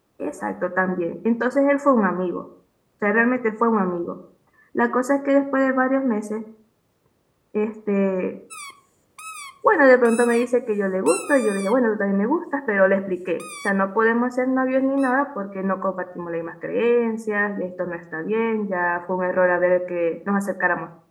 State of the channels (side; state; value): both; identical; correlation 1.00